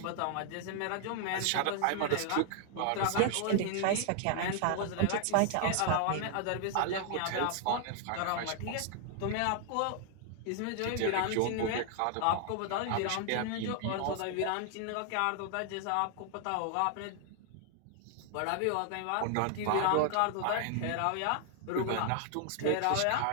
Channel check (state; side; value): different; both; correlation 0.00